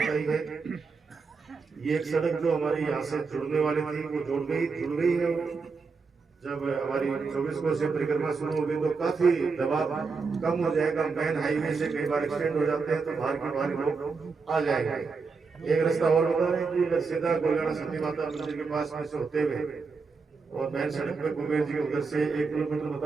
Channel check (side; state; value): left; quieter; 4.8 dB